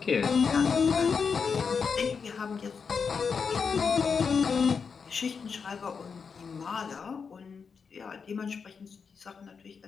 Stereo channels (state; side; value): quieter; right; 5.8 dB